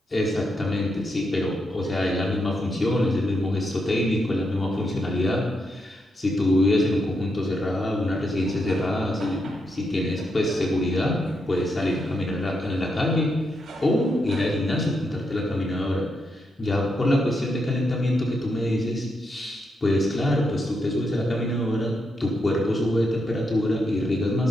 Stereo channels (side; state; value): both; normal; correlation 0.82